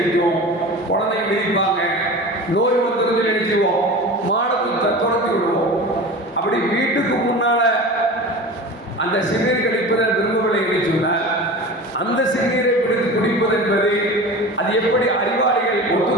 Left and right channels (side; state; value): both; normal; correlation 0.33